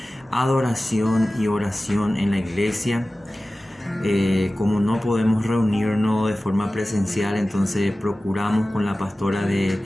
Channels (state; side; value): normal; both; correlation 0.96